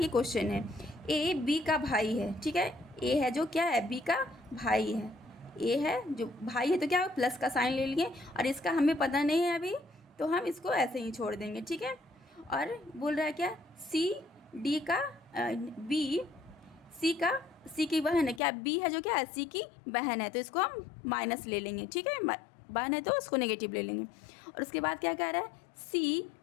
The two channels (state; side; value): drops out; right; at 18.4 s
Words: क्वेश्चन है, ए बी का भाई है। ठीक है, ए है जो क्या है बी का भाई है, ए है जो भाई है तो क्या प्लस का साइन ले लिए और इसका हमें पता नहीं है अभी तो हम इसको ऐसे ही छोड़ देंगे। ठीक है, और बोल रहा है क्या सी डी का बी सी की बहन है, क्या बी है जो क्या है सी की बहन है तो इसको हम माइनस ले लेंगे। ठीक है, बहन है तो उसको नेगेटिव ले लेंगे। और उसके बाद क्या कह रहा है सी